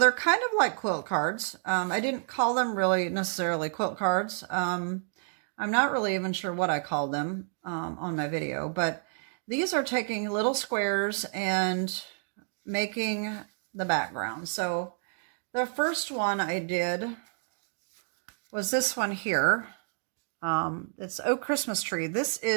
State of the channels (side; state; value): left; silent; digital silence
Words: kind of like quilt cards. I didn't call them really necessarily quilt cards. I'm not really even sure what I called them on my video, but these are taking little squares and making the background. So the first one I did was this one here. It's Oh Christmas Tree. This